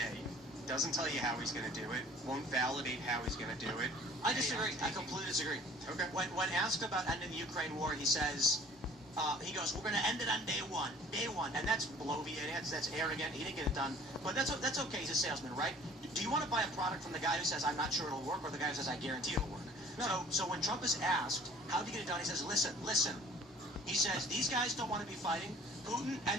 Doesn't tell you how he's going to do it. Won't validate how he's going to do it. I disagree. I completely disagree. Okay. When asked about ending the Ukraine war, he says, he goes, we're going to end it on day one. And that's bloviating, that's arrogant. He didn't get it done. But that's okay. He's a salesman, right? Do you want to buy a product from the guy who says, I'm not sure it'll work, or the guy who says, I guarantee it'll work? No. So when Trump is asked, how do you get it done? He says, listen. He says, these guys don't want to be fighting. Putin and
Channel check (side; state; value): both; normal; correlation 0.50